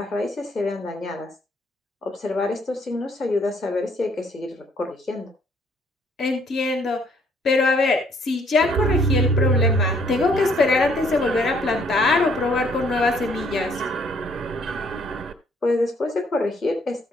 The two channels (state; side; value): normal; both; correlation 0.65